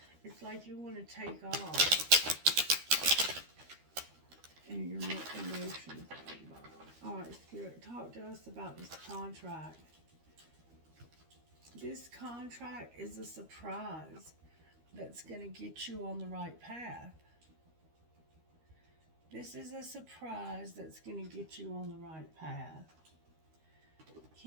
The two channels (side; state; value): left; late; 13 ms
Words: It's like you want to take off, and your emotions are involved. All right, Spirit, talk to us about this contract. This contract is a surprise that's going to get you on the right path. This is a surprise that's going to get you on the right path.